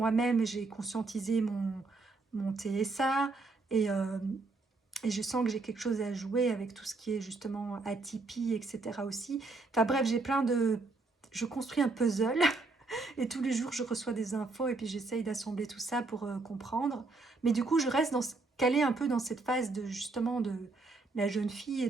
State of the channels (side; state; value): left; quieter; 3.6 dB